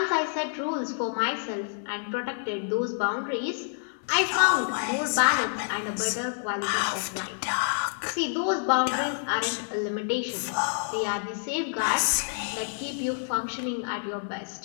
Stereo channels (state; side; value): silent; right; 59 dB below the other